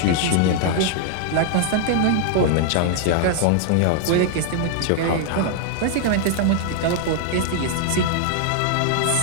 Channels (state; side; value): different; both; correlation 0.00